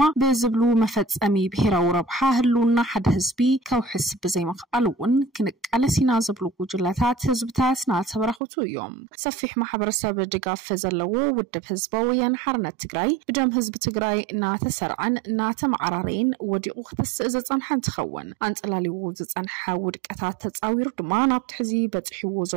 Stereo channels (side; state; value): left; drops out; at 8.4 s